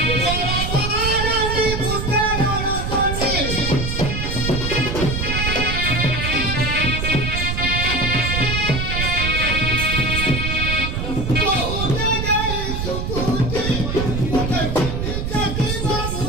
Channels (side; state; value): right; noise; rumble, 2 dB below the sound